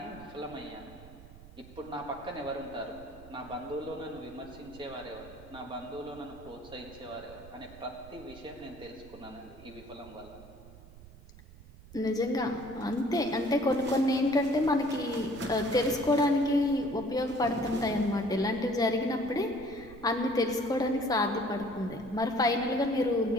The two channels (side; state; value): right; noise; rumble, 19 dB below the sound